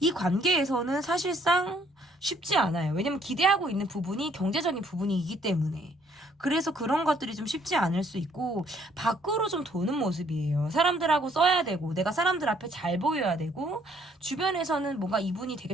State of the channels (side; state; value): both; normal; correlation 0.65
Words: 이 관계에서는 사실상 쉽지 않아요. 왜냐면 기대하고 있는 부분이 경제적인 부분이기 때문에. 그래서 그런 것들이 좀 쉽지 않을 수 있고 밖으로 좀 도는 모습이에요. 사람들하고 써야 되고 내가 사람들 앞에 잘 보여야 되고 주변에서는 뭔가 이분이